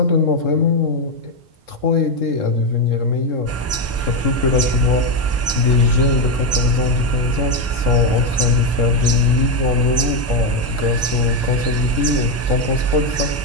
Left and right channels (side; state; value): both; normal; correlation 0.06